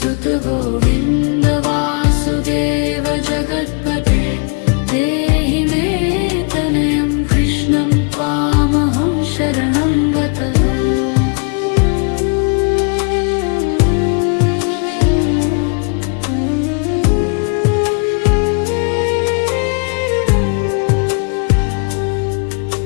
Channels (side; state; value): right; quieter; 37.1 dB